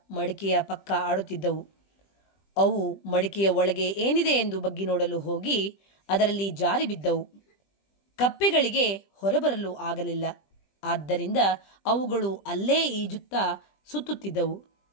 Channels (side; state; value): right; late; 20 ms